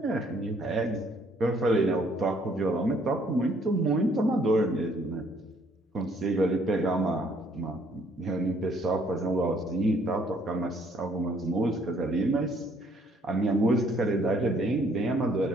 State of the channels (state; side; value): normal; both; correlation 0.64